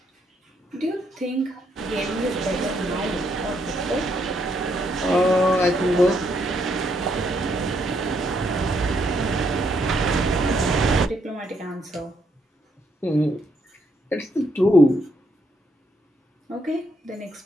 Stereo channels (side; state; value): both; normal; correlation 0.74